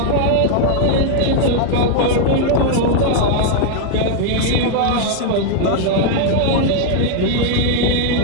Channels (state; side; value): different; both; correlation -0.01